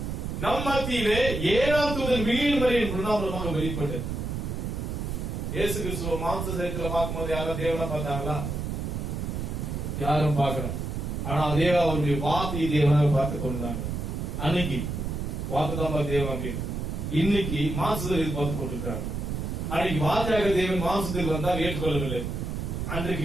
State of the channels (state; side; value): noise; right; rumble, 3 dB below the sound